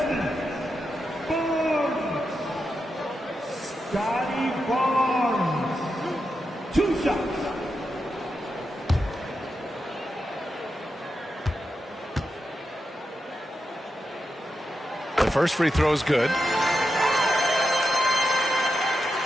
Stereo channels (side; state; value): both; normal; correlation 0.87